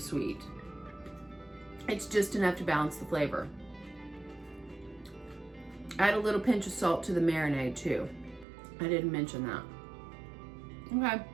It's just enough to balance the flavor. Add a little pinch of salt to the marinade too. I didn't mention that. Okay.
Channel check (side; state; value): left; drops out; at 8.5 s